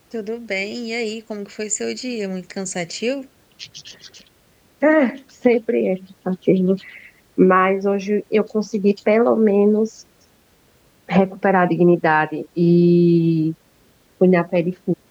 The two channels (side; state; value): both; identical; correlation 1.00